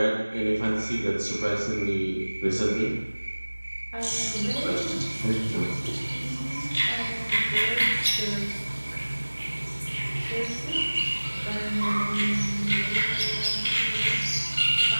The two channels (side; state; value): both; inverted; correlation -1.00